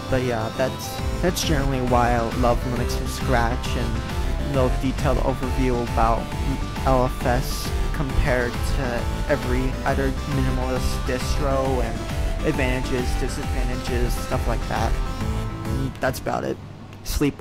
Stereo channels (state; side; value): identical; both; correlation 1.00